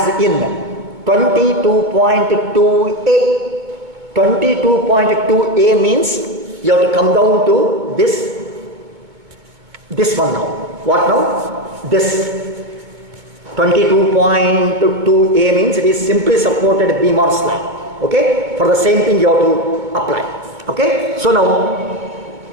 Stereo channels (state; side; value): late; left; 2.2 ms